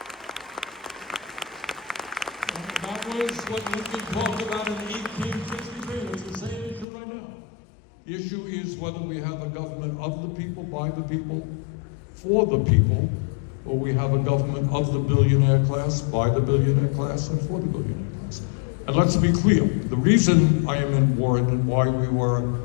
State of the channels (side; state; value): right; drops out; at 6.9 s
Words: That was what Lincoln talked about in 1863. It's the same issue right now. The issue is whether we have a government of the people, by the people, for the people, or we have a government of the billionaire class, by the billionaire class, and for the billionaire class. And let's be clear, the reason I am in Warren and why we were